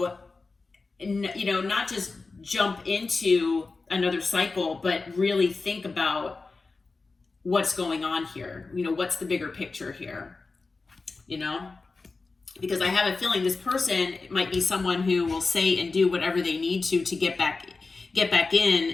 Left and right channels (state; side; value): quieter; right; 3.9 dB